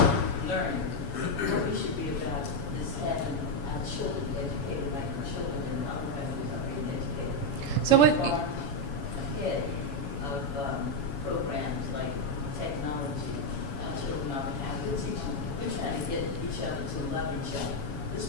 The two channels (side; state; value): right; late; 7.1 ms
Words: learning. What we should be about is having our children educated like the children in other countries are being educated. So what? We are ahead of programs like technology. Our children are behind. We're teaching. We're trying to get each other to love each other. This